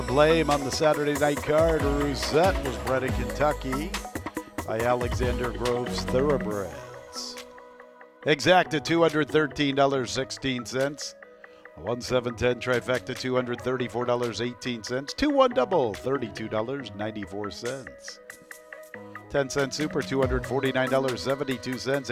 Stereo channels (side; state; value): both; identical; correlation 1.00